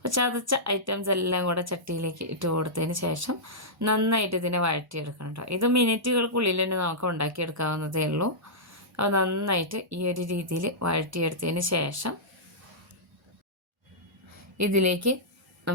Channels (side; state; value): both; normal; correlation -0.13